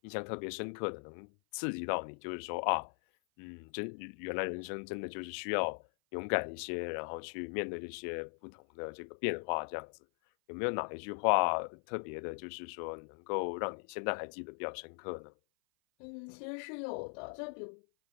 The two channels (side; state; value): right; silent; 52 dB below the other